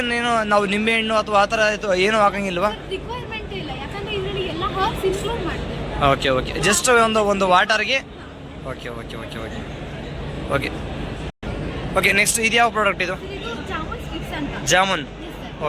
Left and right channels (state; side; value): identical; both; correlation 1.00